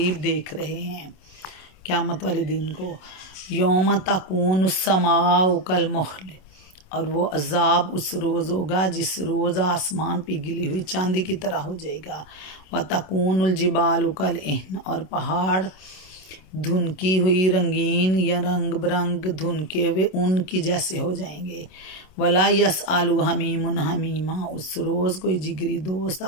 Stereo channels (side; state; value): right; late; 27 ms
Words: देख रहे हैं क़यामत वाले दिन को। यौम तकून समाउ कल मुहल, और वो अजाब उस रोज़ होगा जिस रोज़ आसमान पिघली हुई चांदी की तरह हो जाएगा। व तकूनुल जिबालु कल इहन, और पहाड़ धुनकी हुई रंगीन या रंग बिरंग धुनके हुए ऊन की जैसे हो जाएंगे। वला यस आलू हमीमुन हमीमा, उस रोज़ कोई जिगरी दोस्त